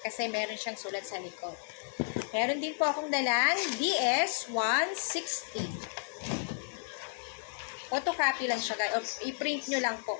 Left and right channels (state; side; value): silent; right; digital silence